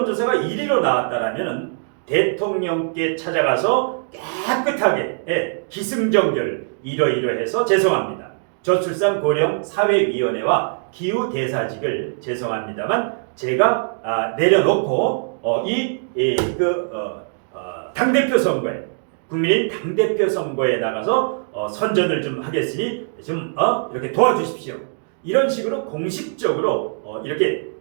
1위로 나왔다라면은 대통령께 찾아가서 깨끗하게 기승전결 이러이러해서 죄송합니다. 저출산 고령 사회위원회와 기후대사직을 죄송합니다만 제가 내려놓고 당대표 선거에 국민의힘 당대표 선거에 나가서 선전을 좀 하겠으니 좀 이렇게 도와주십시오. 이런 식으로 공식적으로 이렇게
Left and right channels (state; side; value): silent; left; digital silence